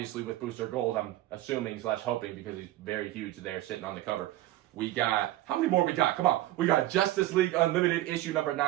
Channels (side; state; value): left; quieter; 15.4 dB